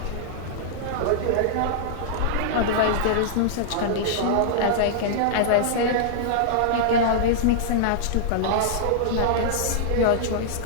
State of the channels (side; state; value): both; different; correlation -0.01